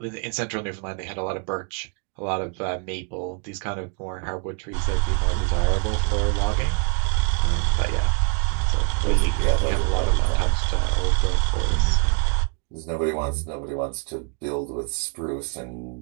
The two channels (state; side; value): quieter; left; 37.2 dB